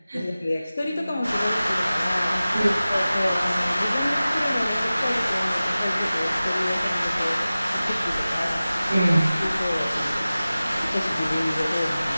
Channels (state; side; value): inverted; both; correlation -0.97